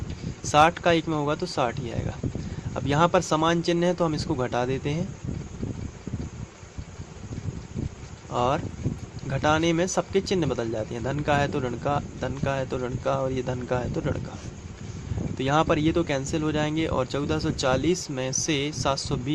60 का 1 में होगा तो 60 ही आएगा। अब यहाँ पर समान चिन्ह है तो हम इसको घटा देते हैं, और घटाने में सबके चिन्ह बदल जाते हैं। धन का है तो ऋण का, धन का है तो ऋण का, और ये धन का है तो ऋण का। तो यहाँ पर ये तो कैंसिल हो जाएंगे, और 1440 में से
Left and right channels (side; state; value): both; identical; correlation 1.00